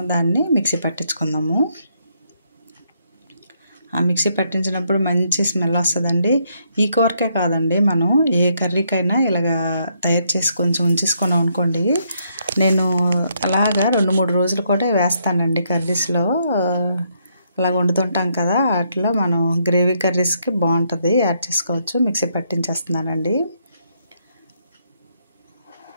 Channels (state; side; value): inverted; both; correlation -0.74